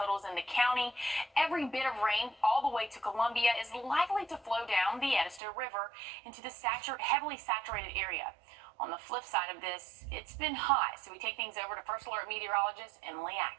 in the county, every bit of rain all the way to Columbia is likely to flow down the Wrdw River into the heavily saturated area. On the flip side of this, it's been hot, so we take things over to First Alert meteorologist Emily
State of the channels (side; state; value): left; drops out; at 5.4 s